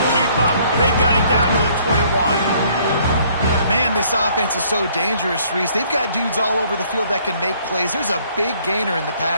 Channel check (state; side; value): inverted; both; correlation -0.62